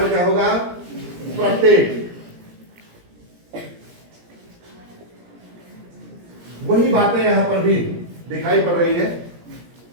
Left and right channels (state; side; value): late; left; 17 ms